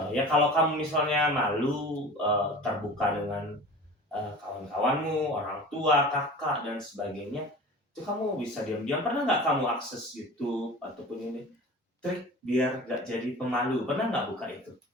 Ya kalau kamu misalnya malu terbuka dengan kawan-kawanmu, orang tua, kakak dan sebagainya, itu kamu bisa diam-diam. Pernah nggak kamu akses YouTube ataupun ini trik biar nggak jadi pemalu? Pernah nggak buka itu?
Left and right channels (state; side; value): normal; both; correlation 0.38